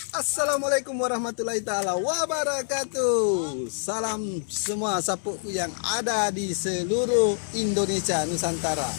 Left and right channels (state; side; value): silent; right; 61 dB below the other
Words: Assalamualaikum warahmatullahi taala wabarakatuh. Salam semua sapuku yang ada di seluruh Indonesia Nusantara.